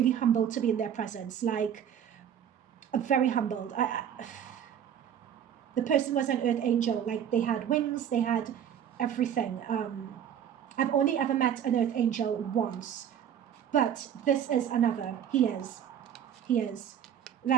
humbled to be in their presence, like very humbled. The person was an earth angel, like they had wings, they had everything. I've only ever met an earth angel once, but this is another. He is.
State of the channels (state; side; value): quieter; left; 9.2 dB